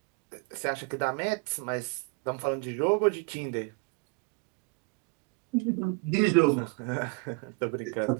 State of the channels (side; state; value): left; quieter; 31.0 dB